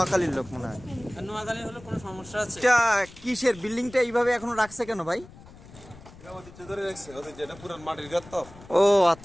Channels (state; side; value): noise; left; rumble, 20 dB below the sound